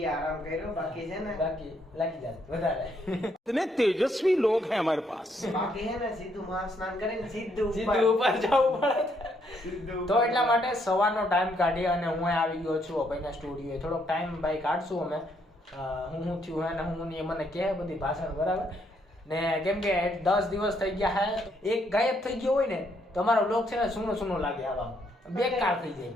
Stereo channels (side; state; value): both; normal; correlation 0.72